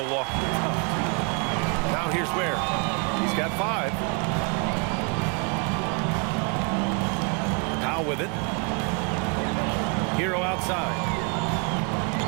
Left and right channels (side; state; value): left; quieter; 34.8 dB